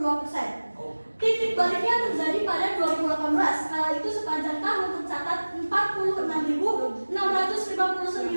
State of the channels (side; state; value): both; inverted; correlation -1.00